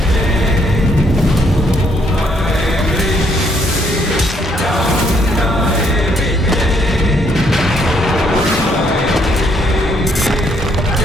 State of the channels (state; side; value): normal; both; correlation 0.70